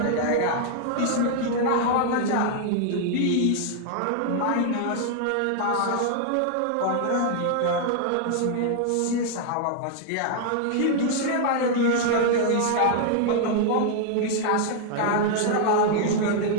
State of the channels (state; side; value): different; both; correlation 0.00